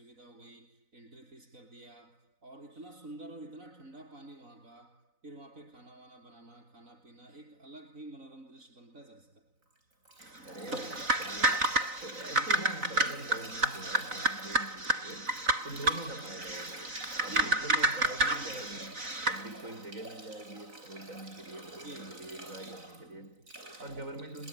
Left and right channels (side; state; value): left; late; 3.9 ms